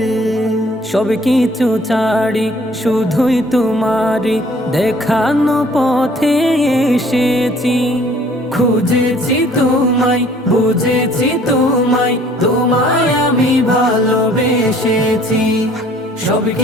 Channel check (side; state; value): both; normal; correlation 0.57